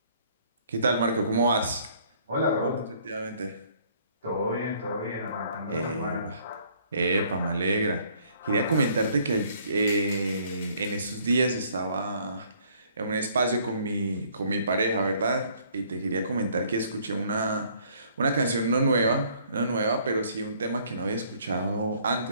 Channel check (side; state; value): both; inverted; correlation -0.62